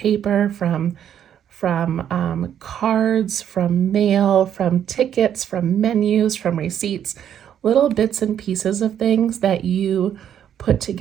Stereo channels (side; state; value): left; quieter; 9.6 dB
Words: from cards, from mail, from tickets, from menus, from receipts, little bits and pieces of things that you put